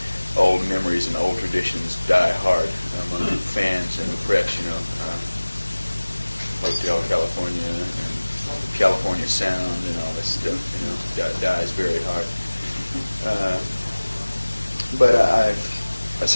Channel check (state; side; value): inverted; both; correlation -1.00